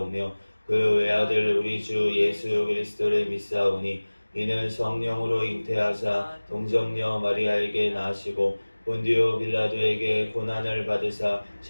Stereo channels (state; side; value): inverted; both; correlation -1.00